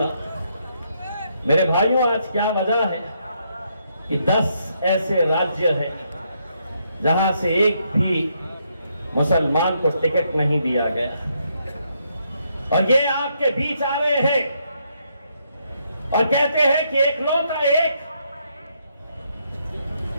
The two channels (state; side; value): inverted; both; correlation -0.76